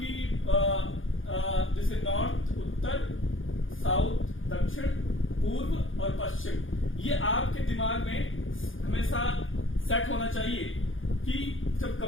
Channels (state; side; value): late; right; 0.58 ms